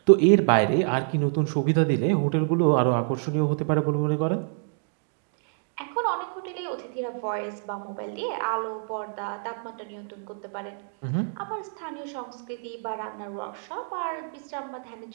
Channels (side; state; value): left; silent; 60 dB below the other